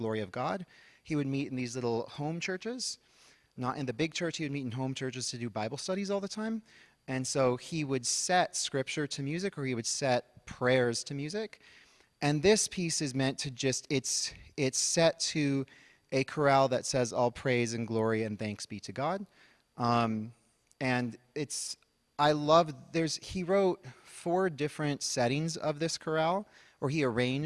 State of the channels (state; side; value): identical; both; correlation 1.00